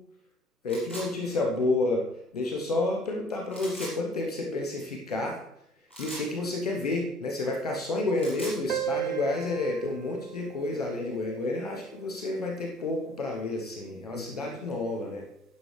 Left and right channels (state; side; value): normal; both; correlation 0.55